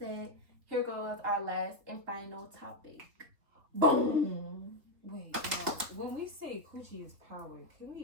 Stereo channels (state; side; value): late; left; 3.6 ms